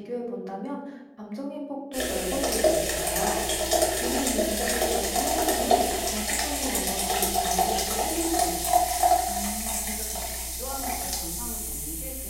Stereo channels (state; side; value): identical; both; correlation 1.00